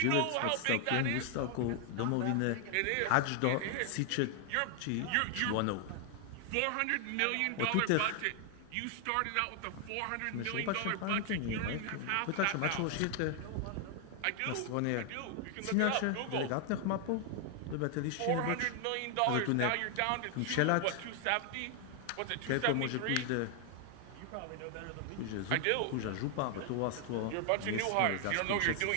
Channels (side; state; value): both; different; correlation 0.00